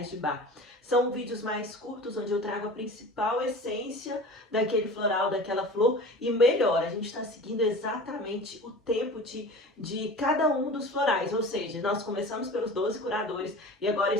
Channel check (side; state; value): both; normal; correlation 0.37